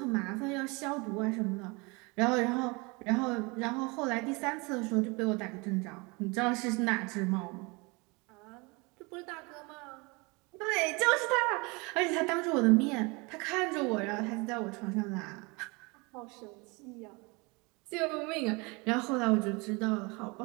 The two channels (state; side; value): quieter; left; 27.6 dB